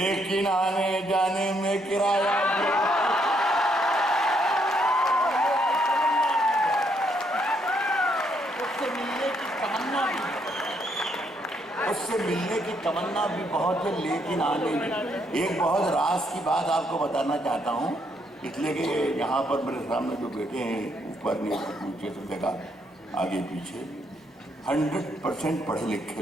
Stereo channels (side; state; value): both; normal; correlation 0.73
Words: आने जाने में किराया भी, उससे मिलने की तमन्ना भी बहुत है, लेकिन आने में। एक बहुत राज की बात आपको बताना चाहता हूँ, इसलिए कि यहाँ पर मेरे सामने जो बैठे हैं, ऊपर नीचे सब जगह आगे पीछे 100% पढ़े लिखे